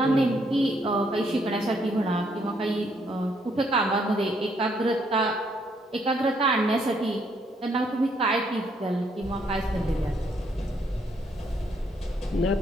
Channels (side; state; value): both; normal; correlation 0.71